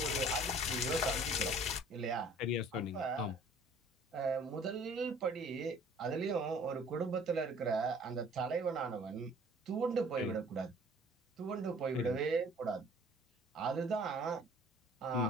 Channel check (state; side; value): normal; both; correlation 0.52